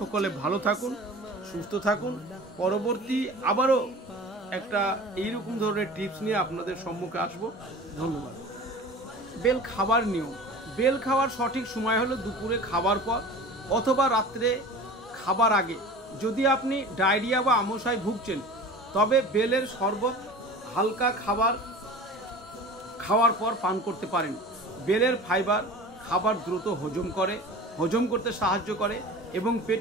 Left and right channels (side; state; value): both; normal; correlation 0.38